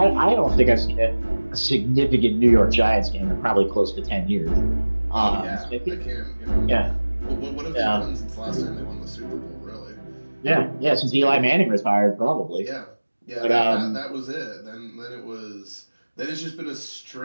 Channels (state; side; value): inverted; both; correlation -1.00